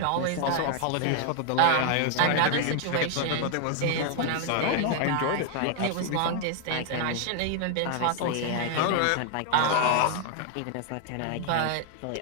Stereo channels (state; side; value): different; both; correlation 0.00